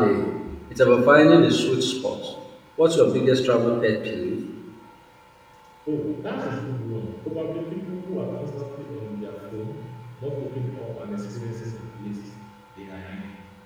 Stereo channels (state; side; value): identical; both; correlation 1.00